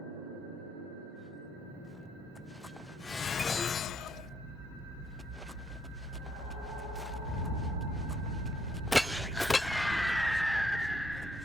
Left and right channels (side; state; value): both; normal; correlation 0.74